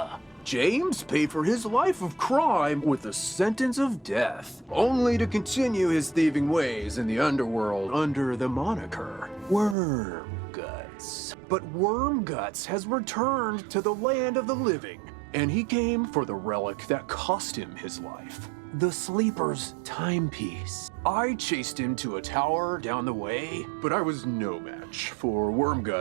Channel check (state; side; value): drops out; left; at 9.8 s